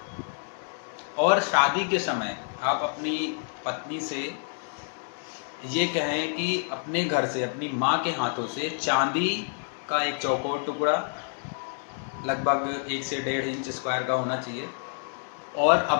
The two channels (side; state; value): right; silent; 59 dB below the other